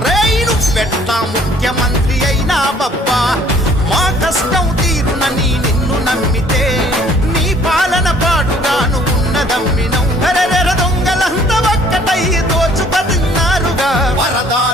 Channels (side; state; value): both; normal; correlation 0.57